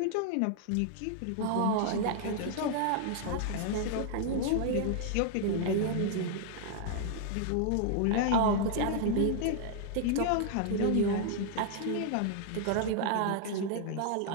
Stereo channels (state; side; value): different; both; correlation 0.00